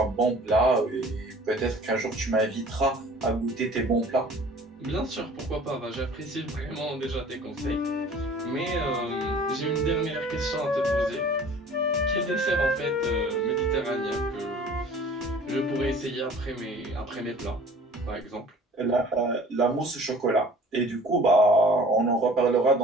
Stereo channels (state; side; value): normal; both; correlation 0.48